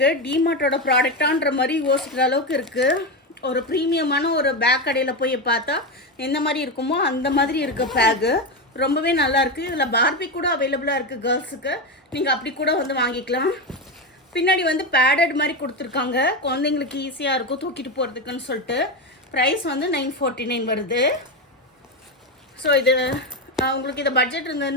டிமார்ட்டோட ப்ராடக்டான்ற மாதிரி யோசிக்கிற அளவுக்கு இருக்குது. ஒரு ப்ரீமியமான ஒரு பேக் கடையில் போய் பார்த்தா எந்த மாதிரி இருக்குமோ அந்த மாதிரி இருக்க பேக்கு ரொம்பவே நல்லாயிருக்கு. இதில் பார்பி கூட அவைலபிளாக இருக்குது கேர்ள்ஸுக்கு. நீங்கள் அப்படி கூட வந்து வாங்கிக்கலாம். பின்னாடி வந்து பேடட் மாதிரி கொடுத்துருக்காங்க. குழந்தைங்களுக்கு ஈஸியாக இருக்கும் தூக்கிட்டு போகிறதுக்குன்னு சொல்லிட்டு. ப்ரைஸ் வந்து 949 வருது. ஸோ இது உங்களுக்கு இந்த பட்ஜெட்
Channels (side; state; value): both; normal; correlation 0.14